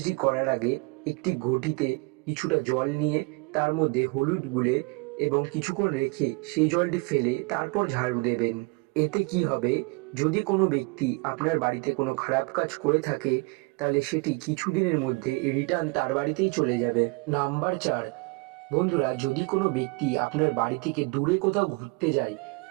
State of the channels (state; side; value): quieter; left; 28.3 dB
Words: করার আগে একটি ঘটিতে কিছুটা জল নিয়ে তার মধ্যে হলুদ গুলে এবং কিছুক্ষণ রেখে সেই জলটি ফেলে তারপর ঝাড়ু দেবেন। এতে কি হবে, যদি কোনো ব্যক্তি আপনার বাড়িতে কোনো খারাপ কাজ করে থাকে, তাহলে সেটি কিছুদিনের মধ্যে রিটার্ন তার বাড়িতেই চলে যাবে। নাম্বার 4, বন্ধুরা, যদি কোনো ব্যক্তি আপনার বাড়ি থেকে দূরে কোথাও ঘুরতে যায়